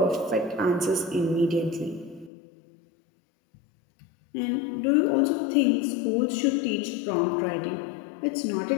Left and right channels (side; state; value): right; drops out; at 2.3 s